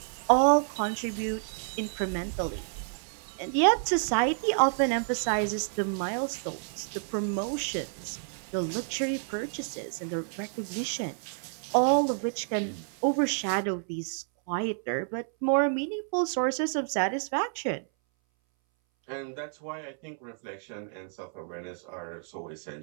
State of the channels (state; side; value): silent; left; 58 dB below the other